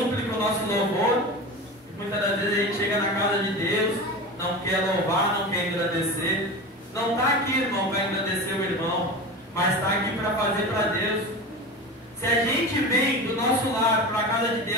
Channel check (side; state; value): both; normal; correlation 0.28